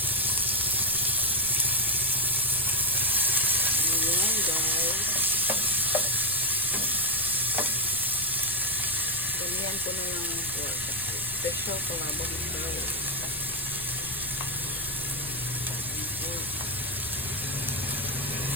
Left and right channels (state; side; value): noise; left; rumble, 17 dB below the sound